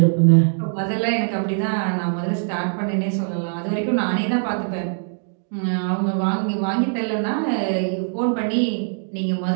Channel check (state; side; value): silent; left; digital silence